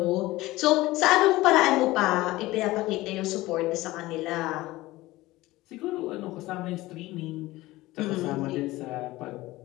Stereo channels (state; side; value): quieter; right; 18.5 dB